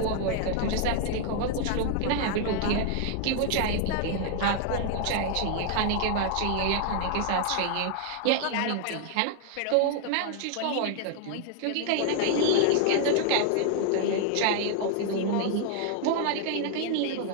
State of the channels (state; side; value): different; both; correlation 0.00